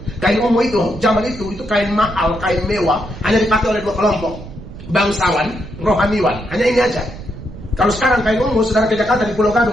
Kain ungu itu, zaman itu kain mahal, kain mewah, hanya dipakai oleh 2 kelompok. Bangsawan, rohaniwan, hanya ini aja. Kalau sekarang kain ungu, saudara ke Jakarta di Pulau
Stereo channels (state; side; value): noise; right; rumble, 14 dB below the sound